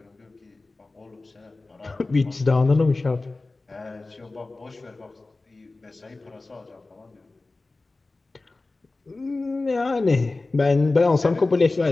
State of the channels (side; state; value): right; quieter; 3.3 dB